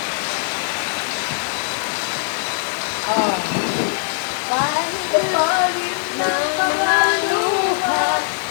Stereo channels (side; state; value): right; silent; digital silence